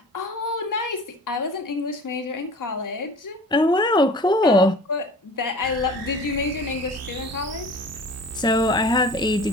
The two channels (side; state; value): both; normal; correlation 0.42